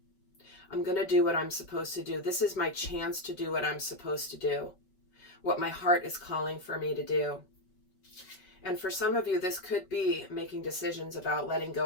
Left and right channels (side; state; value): right; late; 5.3 ms